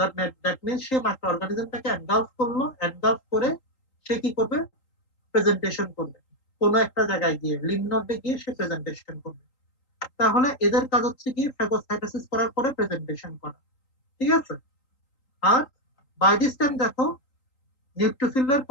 মিন্স সে মাইক্রো অর্গানিজমটাকে এনগালফ করলো, এনগালফ করে সে কি করবে, প্রেজেন্টেশন করবে কোনো একটা জায়গায় গিয়ে, লিম্ফ নোডে গিয়ে সে প্রেজেন্টেশন করবে। তাহলে এদের কাজ হচ্ছে গিয়ে ফ্যাগোসাইটোসিস করার পরে প্রেজেন্টেশন করা, ঠিক আছে। আর বাই দিস টাইম দেখো নিউট্রোফিলের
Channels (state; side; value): late; right; 3.8 ms